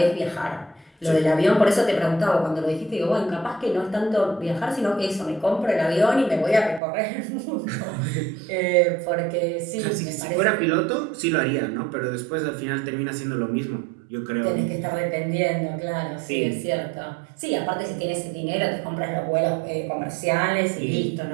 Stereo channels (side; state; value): left; drops out; at 6.8 s